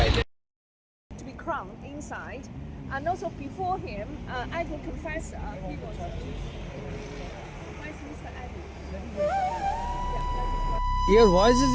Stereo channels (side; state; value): both; identical; correlation 1.00